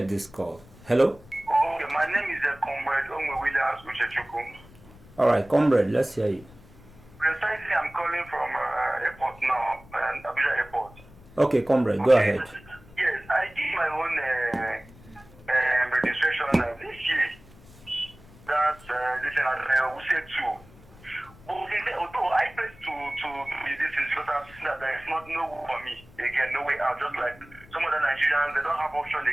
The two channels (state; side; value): noise; left; rumble, 23 dB below the sound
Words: this call. Hello? Okay, my name is Comrade Onwe Williams Uchechukum. All right, comrade, let's hear you. Precisely, I'm calling from airport now, Abuja Airport. Okay, comrade, go ahead. Yes, I did my own registration this year. That's listen, we said 2. But although I paid to be this is because I've seen that there is no way for me again, no way out. Just like some other Nigerians, they don't have option